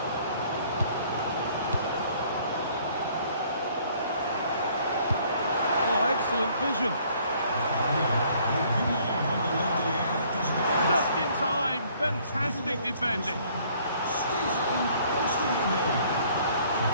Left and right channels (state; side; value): inverted; both; correlation -0.60